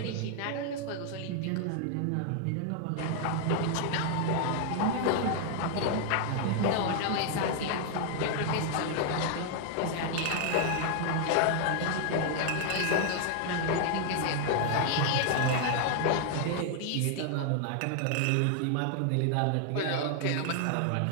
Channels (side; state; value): both; different; correlation 0.00